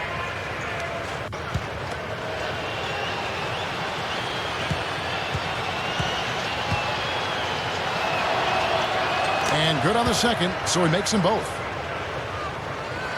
And good on the second, so he makes them both.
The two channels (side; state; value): both; identical; correlation 1.00